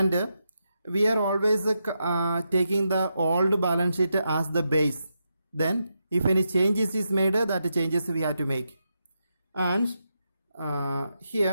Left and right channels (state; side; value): inverted; both; correlation -0.85